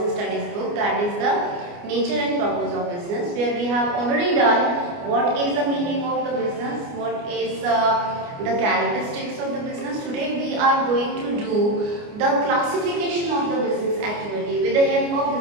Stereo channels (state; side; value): late; left; 29 ms